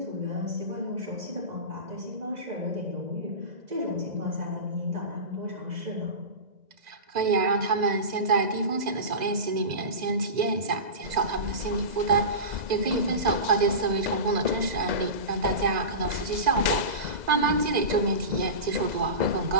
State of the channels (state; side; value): late; left; 2.0 ms